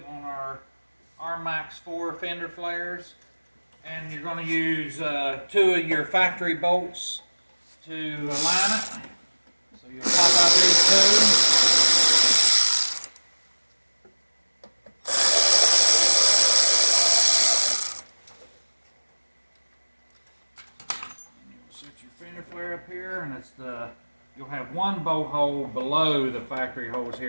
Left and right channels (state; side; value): inverted; both; correlation -1.00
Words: on our Rmax 4 fender flares. And you're going to use 2 of your factory bolts to align it. So you'll pop out these 2. Set your fender flare up here, and you'll have one bolt hole below the factory holes